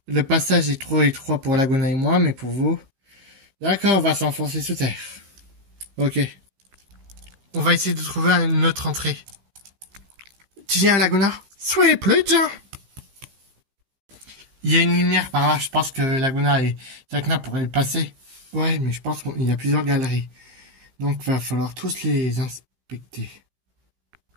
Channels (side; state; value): left; late; 15 ms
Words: Le passage est trop étroit pour Laguna et moi, mais pour vous... D'accord, on va s'enfoncer sous terre. Ok. On va essayer de trouver une autre entrée. Tu viens, Laguna? Soyez plus, Jean. Il y a une lumière par là, je pense que Laguna et Jacna pourraient le passer. Ouais, mais je pense qu'il y a plusieurs galeries. Donc va falloir tous les inspecter.